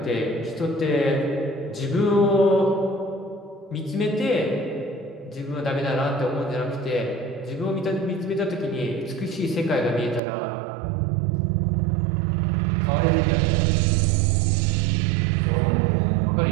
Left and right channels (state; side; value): drops out; left; at 10.2 s